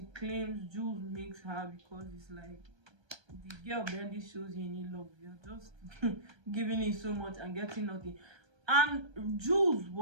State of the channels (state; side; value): late; left; 1.3 ms